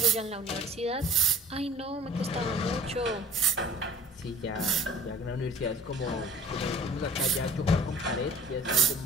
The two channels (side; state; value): both; normal; correlation 0.47